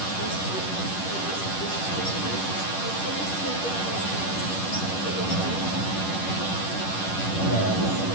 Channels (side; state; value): right; late; 10 ms